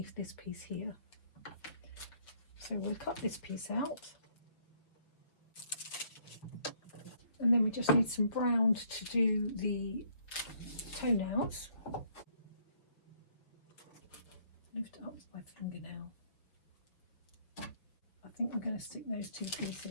this piece here. So we'll cut this piece out, and then we just need some brown to do the toenails. Lift up my fingernail. I think I'm going to stick those 2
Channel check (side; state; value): right; late; 6.3 ms